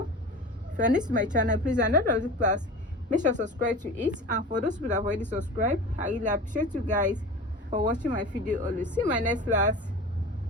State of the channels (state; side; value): normal; both; correlation 0.33